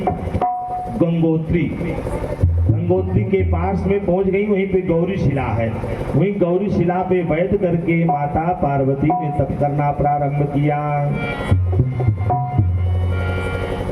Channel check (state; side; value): identical; both; correlation 1.00